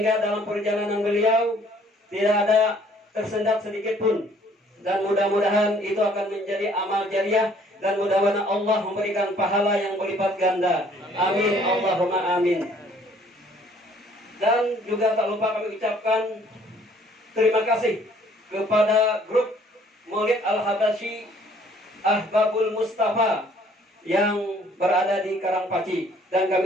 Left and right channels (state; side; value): normal; both; correlation 0.59